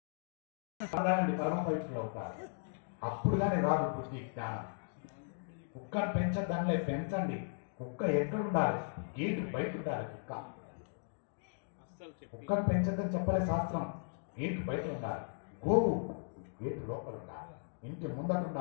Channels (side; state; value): right; silent; digital silence